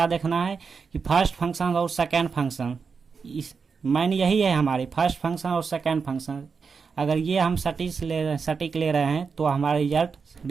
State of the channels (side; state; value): left; quieter; 5.4 dB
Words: देखना है कि फर्स्ट फंक्शन और सेकेंड फंक्शन, इस मैन यही है हमारी, फर्स्ट फंक्शन और सेकेंड फंक्शन। अगर ये हम सटीक ले रहे हैं तो हमारे